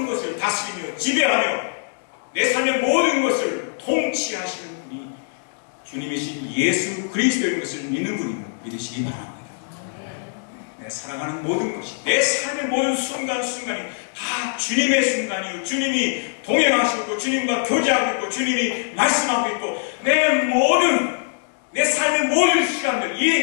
것을 다스리며 지배하며 내 삶의 모든 것을 통치하시는 분이 주님이신 예수 그리스도인 것을 믿는 분임을 믿으시기 바랍니다. 내 살아가는 모든 것이, 내 삶의 모든 순간순간이 다 주님의 순간이요, 주님이 동행하시고 주님과 교제하고 있고 주님이 말씀하고 있고 내 삶의 모든 시간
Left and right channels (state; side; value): silent; right; digital silence